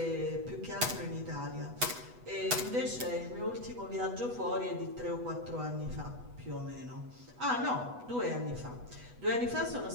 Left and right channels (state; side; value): late; left; 8.1 ms